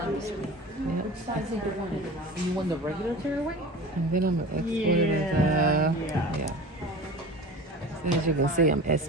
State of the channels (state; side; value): normal; both; correlation 0.36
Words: this way. Yep. Which size do you want it? You want the regular tearaway? And then I'm gonna export it as yeah. So as you can see, I'm